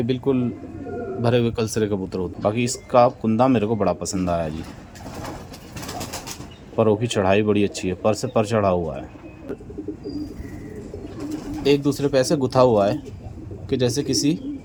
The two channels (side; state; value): both; identical; correlation 1.00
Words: बिल्कुल भरे हुए कलसरे कबूतर होते हैं। बाकी इसका कुंदा मेरे को बड़ा पसंद आया जी। परों की चढ़ाई बड़ी अच्छी है, पर से पर चढ़ा हुआ है, एक दूसरे पे ऐसे गुथा हुआ है कि जैसे किसी